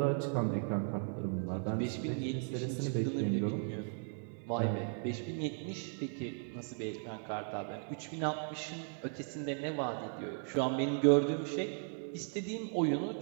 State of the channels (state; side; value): silent; left; 53 dB below the other